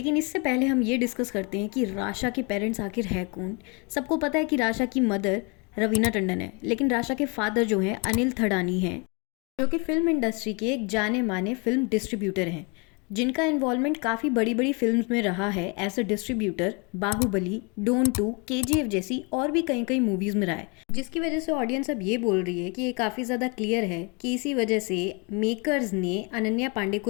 इससे पहले हम ये डिस्कस करते हैं कि राशा के पेरेंट्स आखिर है कौन। सबको पता है कि राशा की मदर रवीना टंडन है, लेकिन राशा के फादर जो हैं अनिल थडानी हैं, जो कि फिल्म इंडस्ट्री के एक जाने माने फिल्म डिस्ट्रीब्यूटर हैं, जिनका इन्वॉल्वमेंट काफ़ी बड़ी बड़ी फिल्म्स में रहा है as a distributor. Baahubali, Don 2, KGF जैसी और भी कई मूवीज़ में रहा है, जिसकी वजह से ऑडियंस अब ये बोल रही है कि ये काफ़ी ज़्यादा क्लियर है कि इसी वजह से मेकर्स ने अनन्या पांडे को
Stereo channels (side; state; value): right; quieter; 31.4 dB